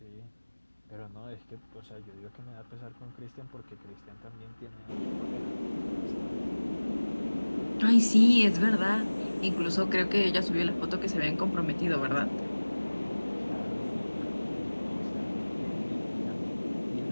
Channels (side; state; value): both; inverted; correlation -1.00